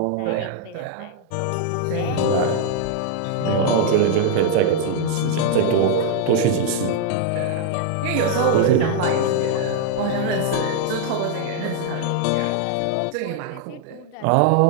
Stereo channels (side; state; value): both; different; correlation 0.00